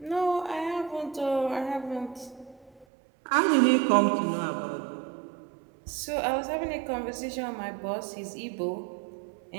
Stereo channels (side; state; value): left; drops out; at 2.9 s